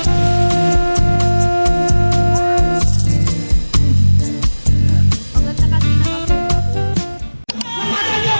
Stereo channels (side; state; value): both; inverted; correlation -1.00